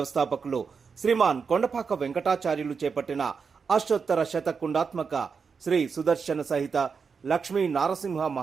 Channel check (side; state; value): left; quieter; 5.6 dB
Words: శ్రీమాన్ కొండపాక వెంకటాచార్యులు చేపట్టిన అష్టోత్తర శతకుండాత్మక శ్రీ సుదర్శన సహిత లక్ష్మీ నారసింహ